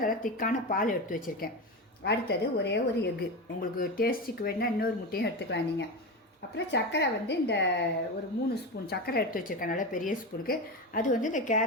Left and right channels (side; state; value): both; normal; correlation 0.20